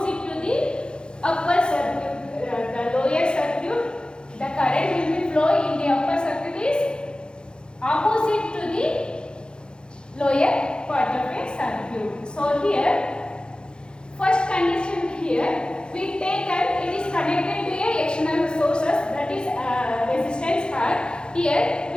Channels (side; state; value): right; late; 0.049 ms